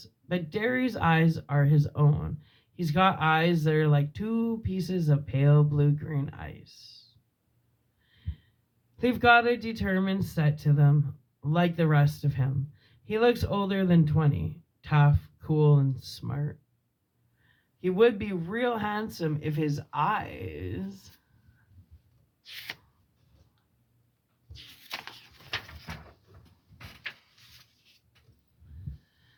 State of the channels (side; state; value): both; identical; correlation 1.00